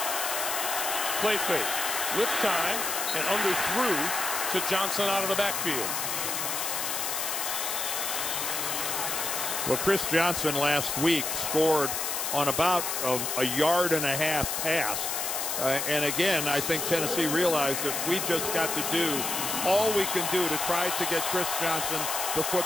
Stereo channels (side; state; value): left; noise; hiss, 1 dB below the sound